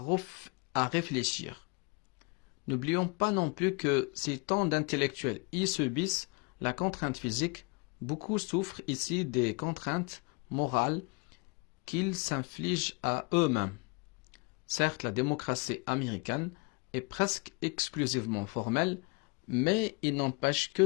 réfléchir. N'oublions pas non plus que si tant d'intellectuels y subissent la contrainte physique, beaucoup souffrent ici des contraintes morales qu'ils s'infligent à eux-mêmes. Certes, la démocratie américaine est presque exclusivement formelle, mais il n'empêche que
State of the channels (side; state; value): right; quieter; 30.5 dB